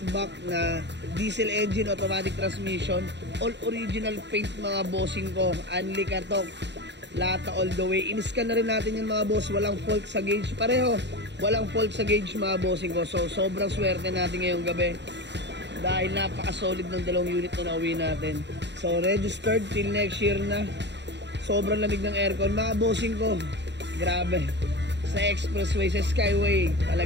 na diesel engine automatic transmission, all original paint mga bossing ko, unli katok, lata all the way. In-scan na rin natin yung mga boss, walang fault sa gauge, pareho walang fault sa gauge mga bossing ko. So sobrang swerte natin ngayong gabi dahil napaka-solid ng dalawang unit na nauwi natin. So registered till next year na. Sobrang lamig ng aircon mga bossing ko. Grabe. Sa expressway, sa skyway,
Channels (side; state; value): left; late; 0.51 ms